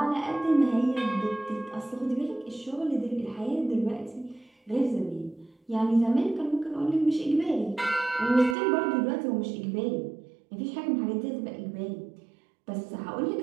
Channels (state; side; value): drops out; left; at 8.6 s